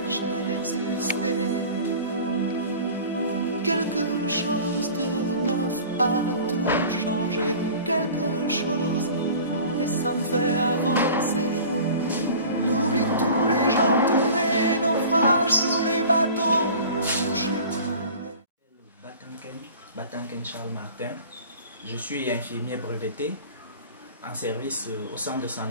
d'exister. Quelque chose de neuf a tout changé, quelque chose, et ça me fait avancer. N'oublie tous les gens, tous les naufrages, tous les bateaux touchés. Batanken Charles Martin, je suis infirmier breveté en service au centre de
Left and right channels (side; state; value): both; inverted; correlation -0.42